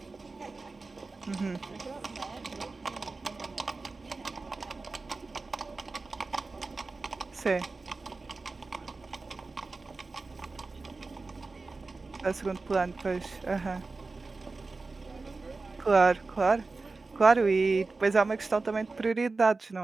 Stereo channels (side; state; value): left; quieter; 3.8 dB